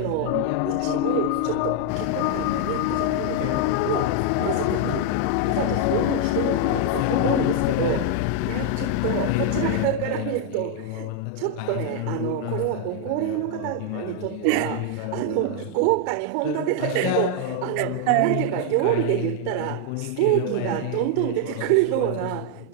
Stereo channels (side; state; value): both; different; correlation 0.00